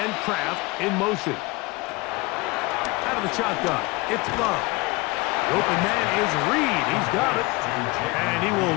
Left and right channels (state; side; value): quieter; right; 23.7 dB